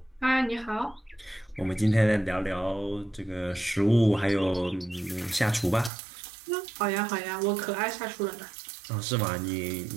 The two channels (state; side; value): drops out; left; at 5.9 s